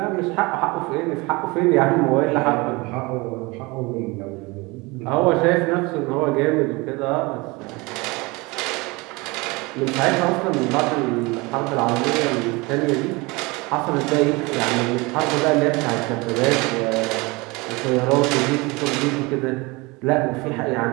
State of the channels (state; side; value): quieter; left; 24.9 dB